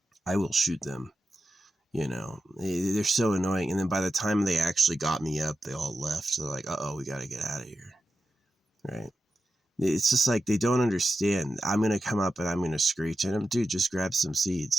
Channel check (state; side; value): normal; both; correlation 0.90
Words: I will shoot them. You know, they're so annoying. And then by the time they actually got me up, they all left. They're like, uh-oh, we got to get out of here. Right? It's just like they don't understand. I'm going to come up and I'm going to screech at them. Dude, just grab some